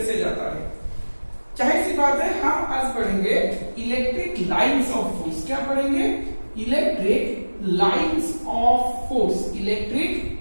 जाता है। चाहे सी बात है, हम आज पढ़ेंगे इलेक्ट्रिक लाइंस ऑफ फोर्स। क्या पढ़ेंगे? Electric lines of force. Electric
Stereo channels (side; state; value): both; inverted; correlation -1.00